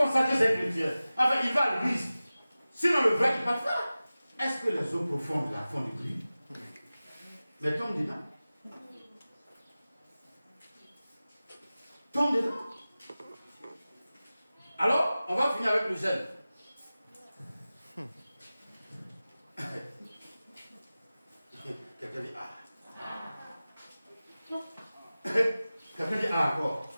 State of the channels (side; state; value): both; inverted; correlation -0.96